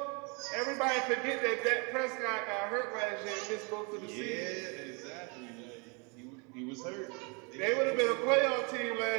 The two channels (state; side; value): quieter; left; 32.6 dB